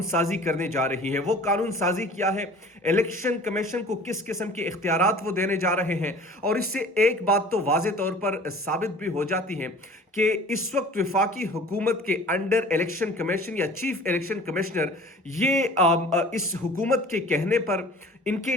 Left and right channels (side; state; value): both; normal; correlation 0.45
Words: साजी करने जा रही है। वो कानून साजी किया है, इलेक्शन कमीशन को किस किस्म के इख्तियारात वो देने जा रहे हैं। और इससे एक बात तो वाज़े तौर पर साबित भी हो जाती है कि इस वक्त वफाकी हुकूमत के अंडर इलेक्शन कमीशन या चीफ इलेक्शन कमिश्नर ये इस हुकूमत के कहने पर, इनके